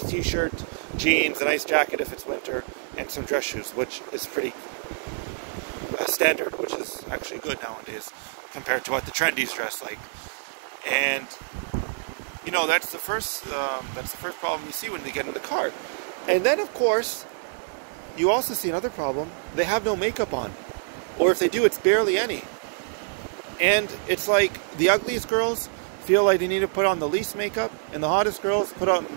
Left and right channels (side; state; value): left; silent; digital silence